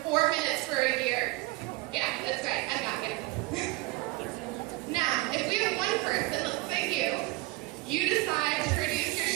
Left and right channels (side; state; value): left; quieter; 20.9 dB